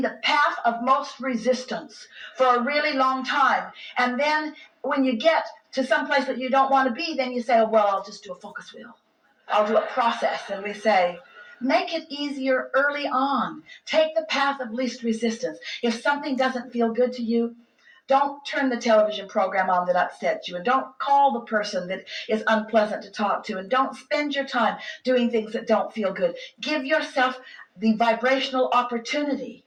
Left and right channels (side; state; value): both; identical; correlation 1.00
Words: the path of most resistance for a really long time. And then when you get to some place that you don't want to be, then you say, oh, well, I'll just do a focus wheel. I'll do a process. And we say, make it easier early on. Take the path of least resistance. If something doesn't feel good to you, Don't turn the television program on that upsets you, and don't call the person that is unpleasant to talk to, and don't spend your time doing things that don't feel good. Give yourself the vibrational opportunity